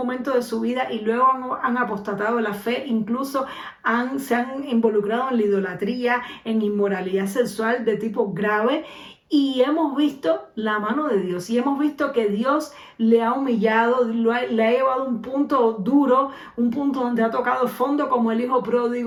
de su vida y luego han apostatado de la fe, incluso se han involucrado en la idolatría, en inmoralidad sexual de tipo grave. Y hemos visto la mano de Dios y hemos visto que Dios le ha humillado, le ha llevado a un punto duro, un punto donde ha tocado fondo, como el hijo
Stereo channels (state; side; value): identical; both; correlation 1.00